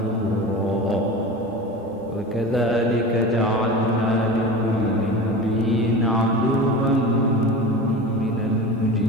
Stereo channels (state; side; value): normal; both; correlation 0.31